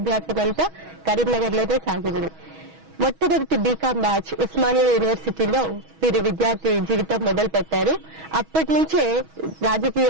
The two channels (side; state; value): left; late; 6.2 ms